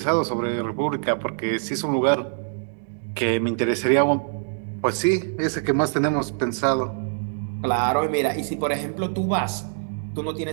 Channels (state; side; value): silent; left; digital silence